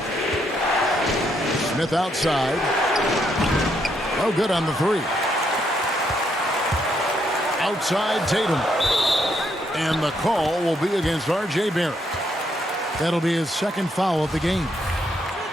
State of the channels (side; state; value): both; normal; correlation 0.75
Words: Smith outside. No good on the 3. Outside Tatum. And the call will be against R.J. Barrett. That'll be his second foul of the game.